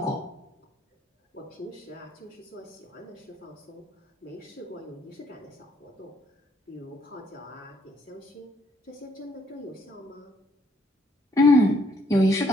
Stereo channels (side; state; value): both; normal; correlation 0.70